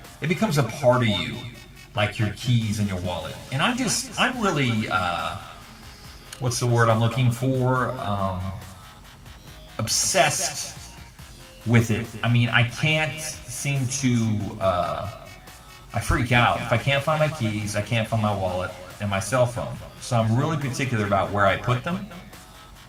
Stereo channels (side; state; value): both; identical; correlation 1.00